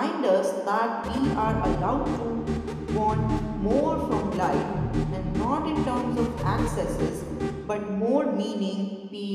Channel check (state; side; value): identical; both; correlation 1.00